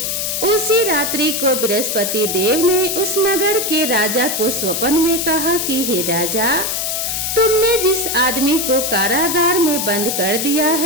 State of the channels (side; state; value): left; noise; hiss, 1 dB below the sound